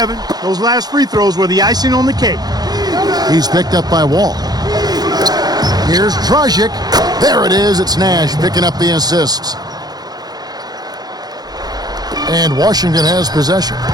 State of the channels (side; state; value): left; late; 0.19 ms